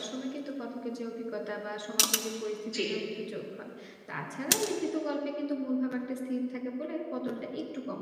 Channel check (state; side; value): identical; both; correlation 1.00